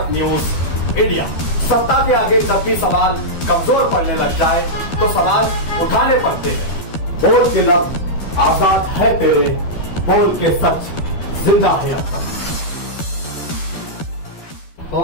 न्यूज इंडिया। सत्ता के आगे जब भी सवाल कमजोर पड़ने लग जाए तो सवाल उठाने पड़ते हैं। बोल के लफ्ज आजाद है तेरे, बोल के सच जिंदा है अब तक।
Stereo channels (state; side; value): late; right; 12 ms